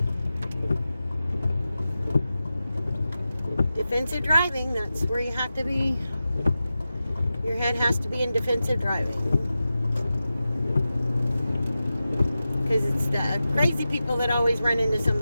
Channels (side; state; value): both; inverted; correlation -0.93